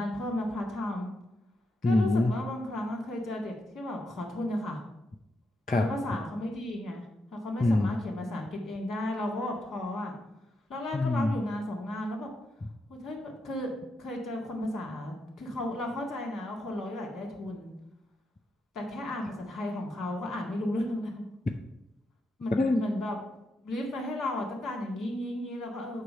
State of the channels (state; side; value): normal; both; correlation 0.83